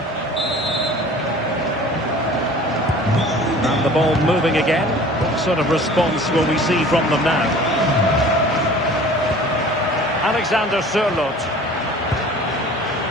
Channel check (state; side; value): normal; both; correlation 0.45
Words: The ball moving again. What sort of response will we see from them now? Alexander Sørloth.